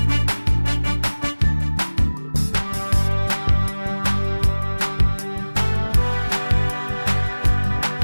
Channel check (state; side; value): inverted; both; correlation -1.00